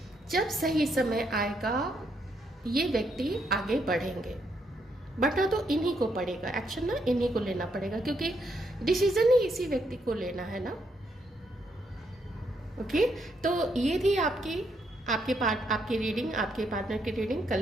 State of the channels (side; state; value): both; normal; correlation 0.76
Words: जब सही समय आएगा ये व्यक्ति आगे बढ़ेंगे, बढ़ना तो इन्हीं को पड़ेगा, एक्शन ना इन्हीं को लेना पड़ेगा, क्योंकि डिसीजन ही इसी व्यक्ति को लेना है ना। ओके, तो ये थी आपकी रीडिंग, आपके पार्टनर की रीडिंग,